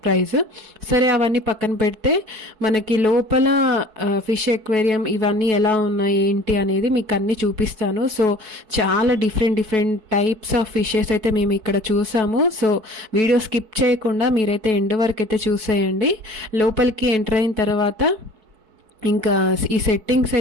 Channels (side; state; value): left; late; 4.6 ms